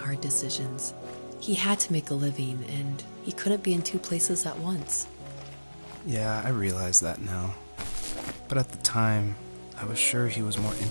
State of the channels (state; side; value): inverted; both; correlation -1.00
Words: decisions. He had to make a living, and he couldn't be in two places at once. Yeah, I realize that now. But at the time, I was sure he was more